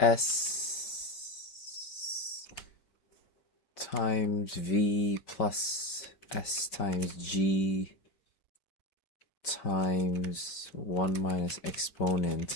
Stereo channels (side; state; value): right; late; 5.2 ms